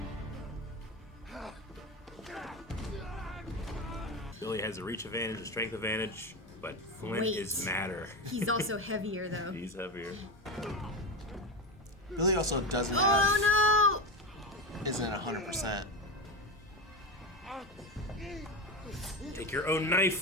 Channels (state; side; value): normal; both; correlation 0.18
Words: Billy has a reach advantage, a strength advantage, but Flint Weight. is madder. He's also heavier, though. He's heavier. Billy also doesn't have, Oh isn't 100%. Take your own